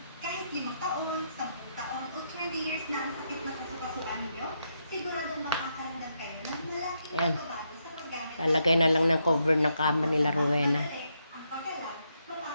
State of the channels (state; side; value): inverted; both; correlation -0.80